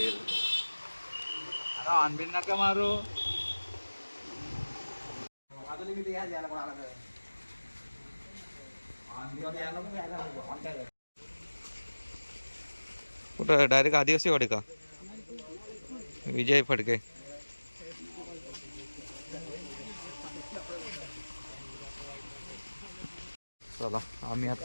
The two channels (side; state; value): both; inverted; correlation -1.00